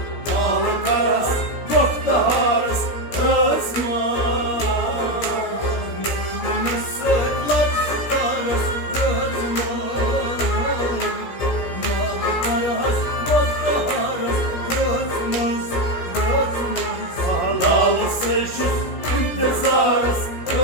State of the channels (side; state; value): right; late; 17 ms